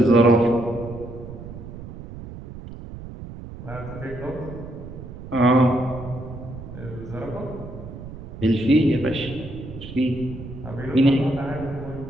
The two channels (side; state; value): right; noise; rumble, 12 dB below the sound